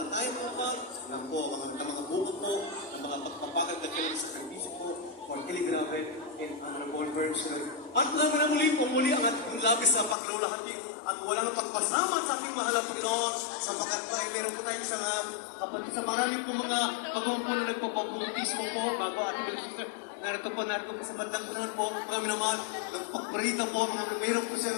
po pa. Yan po mga buko po, ng mga pagpapagad na kailan sa servisyo po for Kiligrabe in honorable version. At naman ang muli ang ating labis sa paglulahati at walang pagpasama sa ating mahal na Panginoon sapagkat po ay meron po tayo isang kapatid sa marami po mga pagmampo na nagpapabautismo po bago ating sister. Narito po sa bandang unahan po, kami naman, nagpaparita po, mayroon po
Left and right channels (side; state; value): right; drops out; at 10.2 s